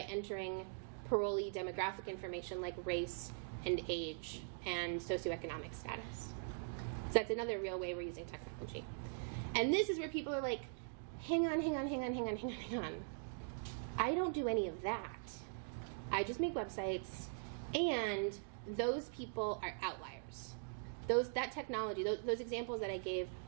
parolee demographic information like race and age and socioeconomic status. So that's another real way we're using technology. And this is where people are like, hang on. I don't do any of that. I just make websites, and those people are outliers. That technology, those examples that I gave,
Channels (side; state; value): left; silent; digital silence